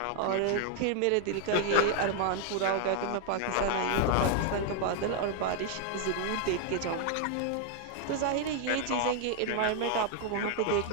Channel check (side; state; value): both; different; correlation 0.00